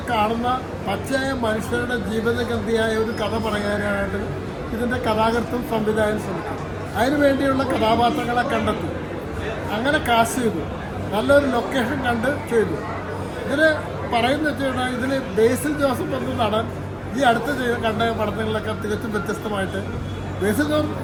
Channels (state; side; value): identical; both; correlation 1.00